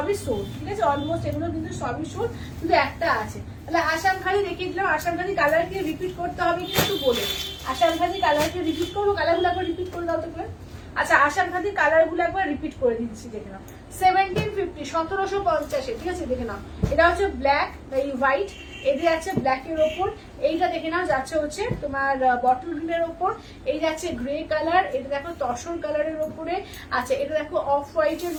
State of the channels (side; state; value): both; identical; correlation 1.00